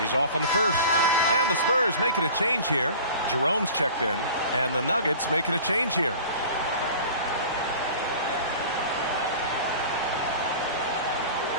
off on the first. And the Spurs making a change here. Jerome's checked in. And the Nuggets making a change here.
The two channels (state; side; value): inverted; both; correlation -0.41